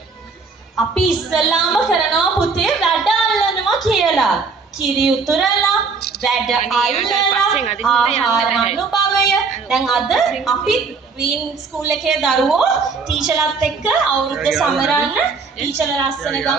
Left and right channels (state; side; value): quieter; left; 4.7 dB